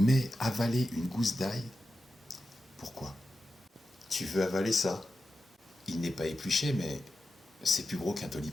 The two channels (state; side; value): normal; both; correlation 0.91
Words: avaler une gousse d'ail, pourquoi? Tu veux avaler ça? Il n'est pas épluché, mais c'est plus gros qu'un